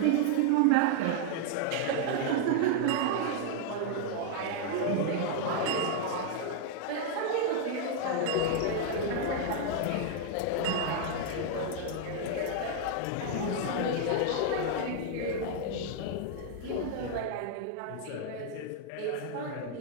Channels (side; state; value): both; different; correlation 0.00